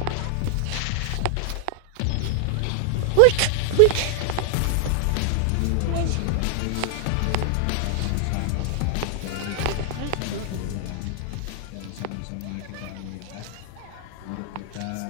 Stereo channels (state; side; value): different; both; correlation 0.00